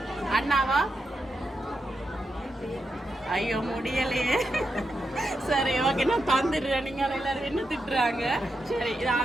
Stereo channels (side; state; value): both; normal; correlation 0.86